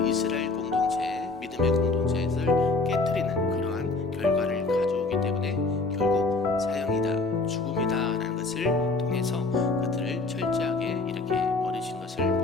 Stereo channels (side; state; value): right; quieter; 3.5 dB